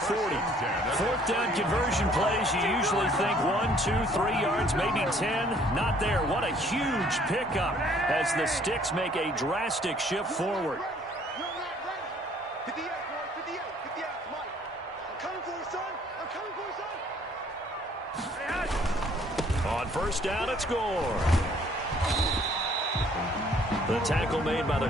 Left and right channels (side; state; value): both; normal; correlation 0.60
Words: 4th down conversion plays, you usually think 1, 2, 3 yards, maybe 10. Not there. What a huge pickup as the Sticks make a drastic shift forward. On 1st down, it's score. The tackle made by the